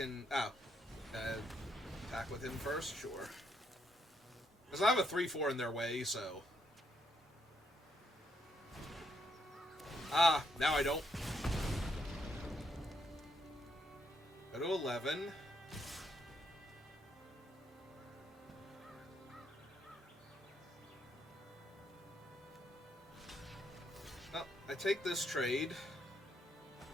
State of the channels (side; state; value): both; normal; correlation 0.76